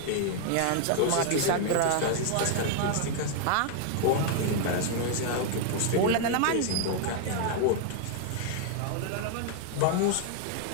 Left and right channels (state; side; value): different; both; correlation 0.00